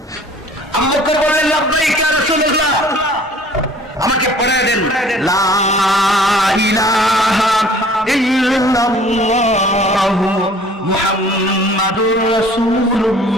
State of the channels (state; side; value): normal; both; correlation 0.51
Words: আবু বকর বললেন লাব্বাইক ইয়া রাসূলুল্লাহ, আমাকে পড়ায় দেন লা ইলাহা ইল্লাল্লাহু মুহাম্মাদুর